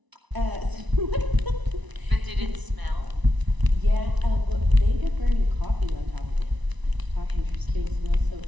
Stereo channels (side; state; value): left; late; 1.0 ms